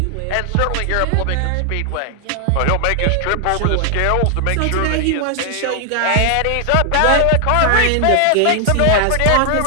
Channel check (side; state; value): both; different; correlation 0.00